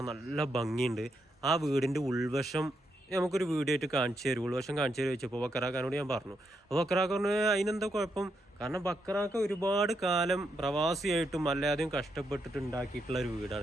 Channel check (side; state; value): both; normal; correlation 0.81